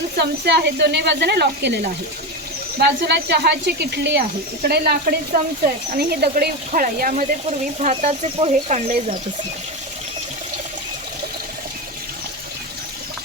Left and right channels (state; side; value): normal; both; correlation 0.17